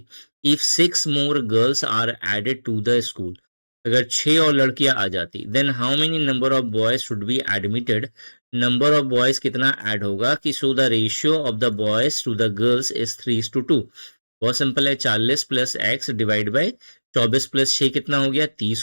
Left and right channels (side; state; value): both; inverted; correlation -1.00